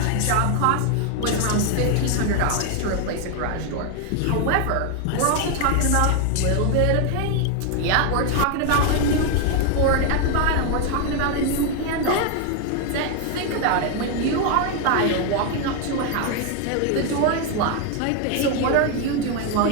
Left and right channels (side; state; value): both; different; correlation 0.01